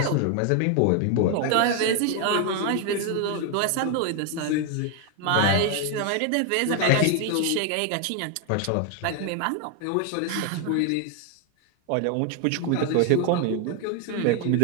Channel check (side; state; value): both; different; correlation 0.01